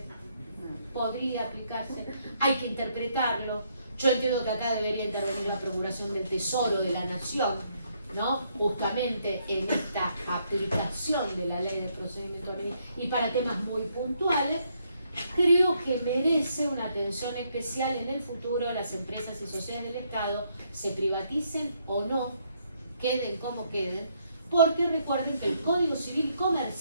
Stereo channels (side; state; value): both; inverted; correlation -0.73